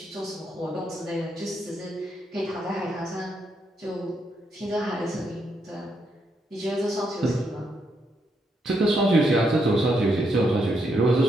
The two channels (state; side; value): normal; both; correlation 0.78